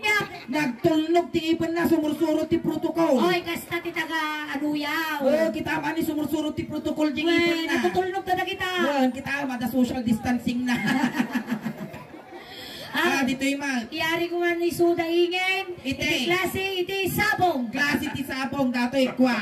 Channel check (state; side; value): identical; both; correlation 1.00